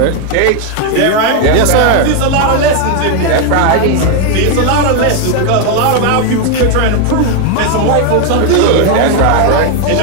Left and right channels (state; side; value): different; both; correlation 0.01